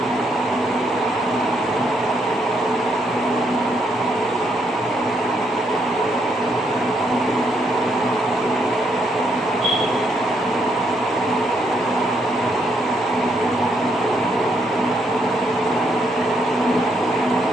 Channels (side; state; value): both; normal; correlation 0.74